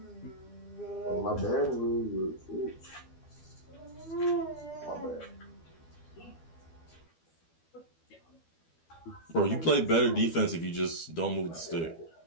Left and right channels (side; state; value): right; late; 12 ms